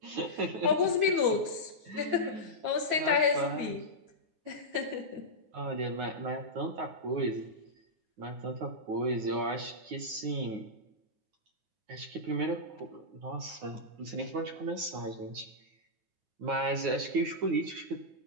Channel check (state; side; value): late; left; 9.5 ms